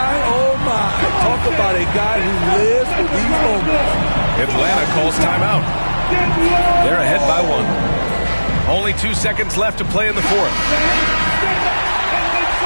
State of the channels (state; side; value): inverted; both; correlation -1.00